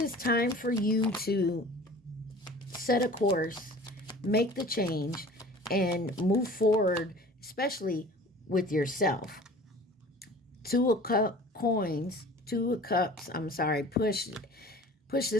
time for you to set a course, make the change, and move forward, especially with yourself. Two of coins, two of cups. I'm sorry. Push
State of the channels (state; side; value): normal; both; correlation 0.44